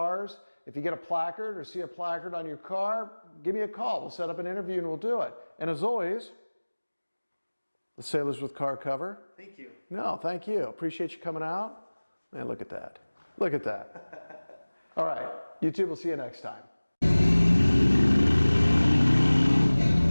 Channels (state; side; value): inverted; both; correlation -1.00